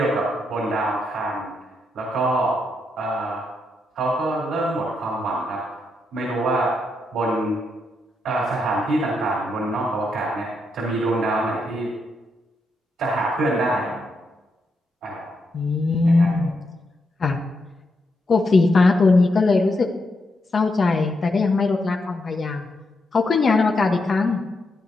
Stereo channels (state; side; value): normal; both; correlation 0.82